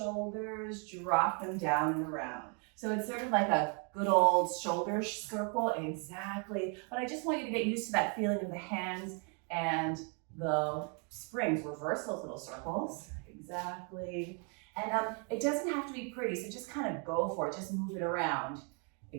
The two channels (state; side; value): quieter; left; 37.7 dB